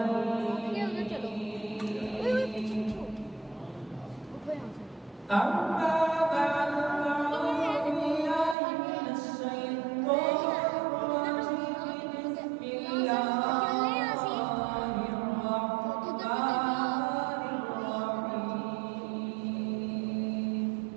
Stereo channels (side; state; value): left; drops out; at 8.6 s